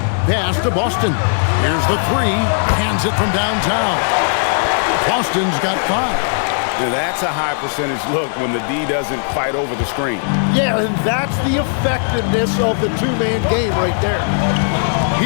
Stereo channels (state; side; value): silent; right; digital silence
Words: Pass to Boston. Here's the three. Hands it from downtown. Boston's got 5. That's a high percentage look when the D doesn't fight over the screen. Yeah, and that's the effectiveness of the two-man game right there.